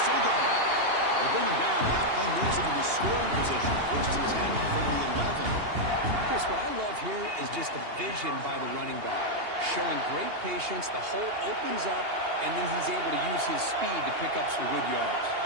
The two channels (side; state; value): left; late; 2.8 ms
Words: still going. They bring him down. That play moves him into scoring position. 1st and 10 from the 11. Chris, what I love here is just the vision by the running back. Showing great patience, the hole opens up, and then he's able to use his speed to pick up some good yards.